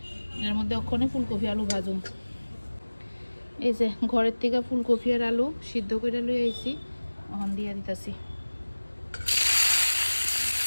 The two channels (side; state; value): both; inverted; correlation -1.00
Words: এর মধ্যে ওখানে ফুলকপি আলু ভাজুম। এই যে ঘরের থেকে ফুলকপি আর আলু সিদ্ধ করে লই আইছি, ওখান দিয়ে দিতেছি।